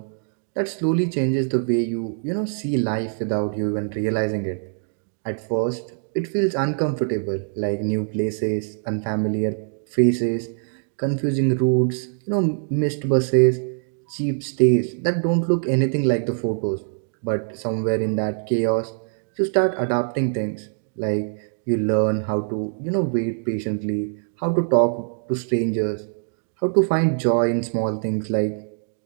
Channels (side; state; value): left; silent; digital silence